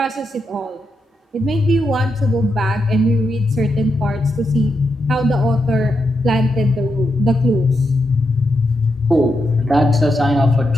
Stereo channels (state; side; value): normal; both; correlation 0.84